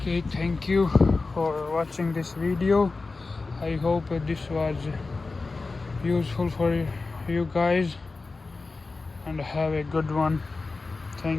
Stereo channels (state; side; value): quieter; right; 3.8 dB